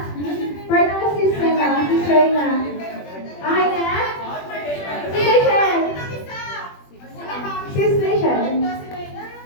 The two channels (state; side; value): late; right; 21 ms